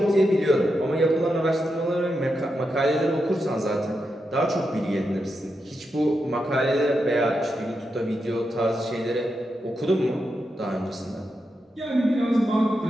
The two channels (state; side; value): normal; both; correlation 0.86